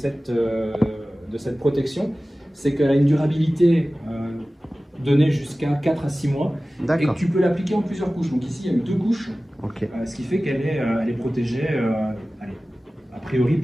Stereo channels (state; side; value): normal; both; correlation 0.97